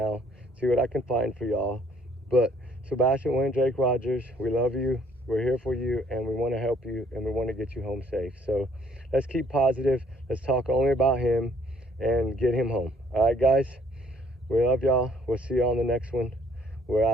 see what I can find for y'all. But Sebastian Wayne Drake Rogers, we love you. We're here for you, and we want to help you, and we want to get you home safe. So let's keep positive. Let's talk only about him and get him home. All right, guys, we love y'all. We'll see you on the next one. We're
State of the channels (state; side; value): normal; both; correlation 0.62